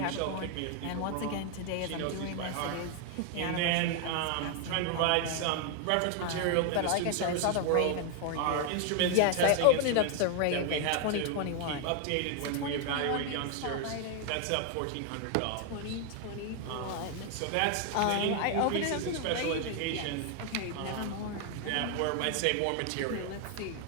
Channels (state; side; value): different; both; correlation 0.00